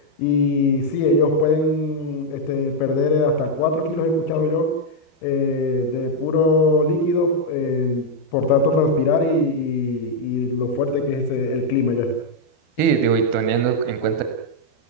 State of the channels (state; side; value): late; right; 12 ms